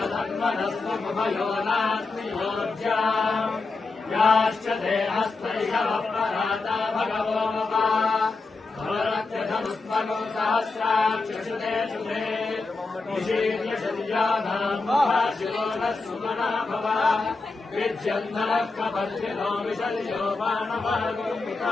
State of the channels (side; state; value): right; quieter; 3.8 dB